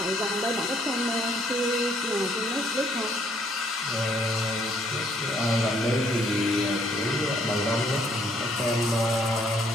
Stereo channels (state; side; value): normal; both; correlation 0.66